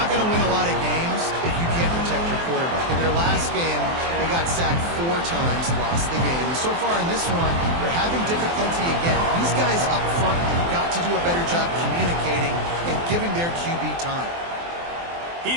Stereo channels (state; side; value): late; left; 23 ms